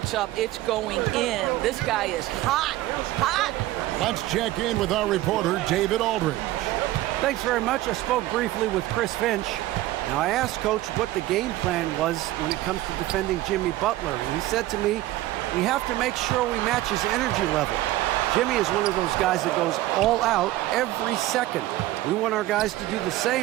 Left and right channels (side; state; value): left; quieter; 16.1 dB